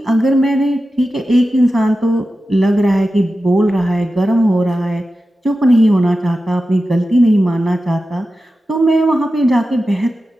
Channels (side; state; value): both; normal; correlation 0.93